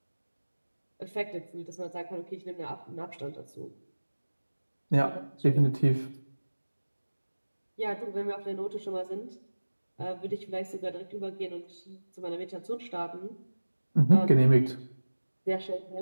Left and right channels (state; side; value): inverted; both; correlation -1.00